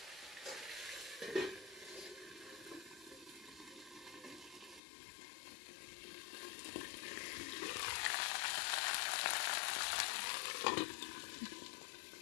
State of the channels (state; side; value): drops out; right; at 4.8 s